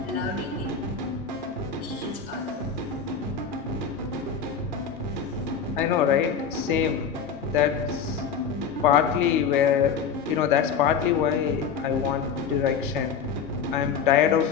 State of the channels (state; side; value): quieter; right; 6.6 dB